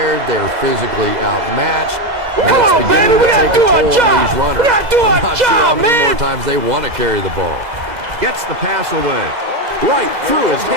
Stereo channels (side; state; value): left; late; 2.0 ms